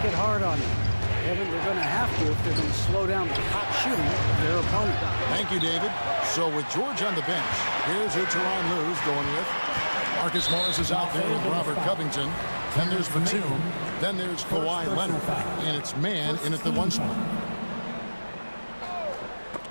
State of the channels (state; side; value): inverted; both; correlation -1.00